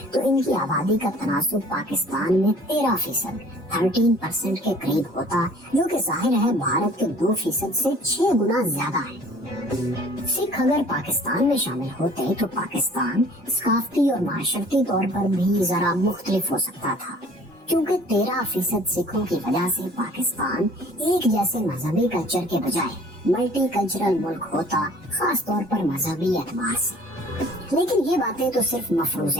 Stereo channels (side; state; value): both; normal; correlation 0.51